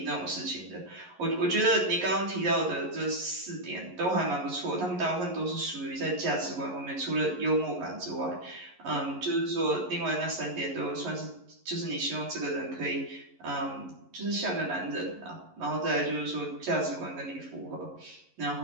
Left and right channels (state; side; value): late; left; 11 ms